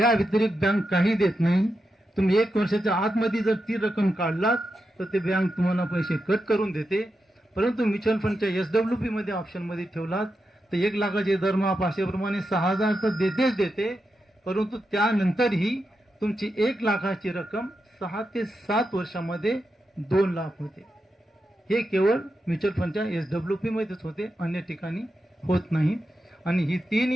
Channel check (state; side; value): normal; both; correlation 0.87